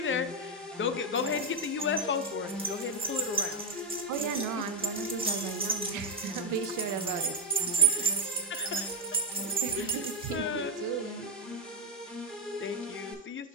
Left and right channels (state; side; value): normal; both; correlation 0.03